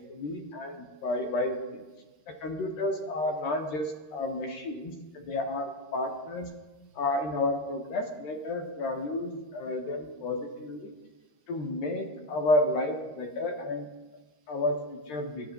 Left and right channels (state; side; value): late; right; 12 ms